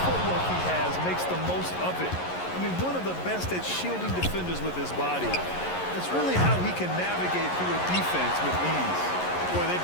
footwork he has makes the most of it. I mean, one of the best at shielding defenders with his body. It's really how he can navigate through a defense with ease. Boy, they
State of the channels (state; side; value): late; right; 11 ms